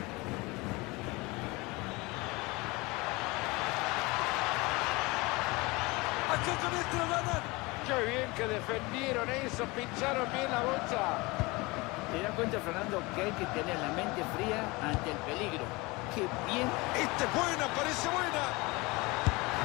Aquí con esto lo ganan. Qué bien que defendieron eso, pincharon bien la bolsa. ¿Te das cuenta, Fernando, que hay que tener la mente fría ante el peligro? ¡Qué bien! Esta es buena, parece buena.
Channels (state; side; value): quieter; right; 24.1 dB